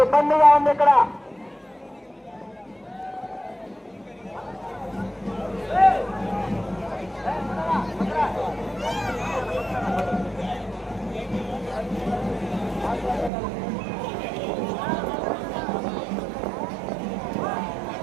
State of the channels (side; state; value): left; drops out; at 13.3 s